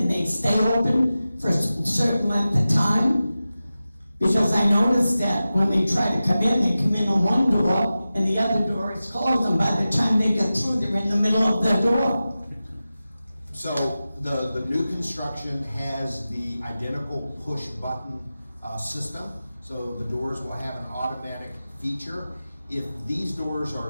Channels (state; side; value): inverted; both; correlation -0.94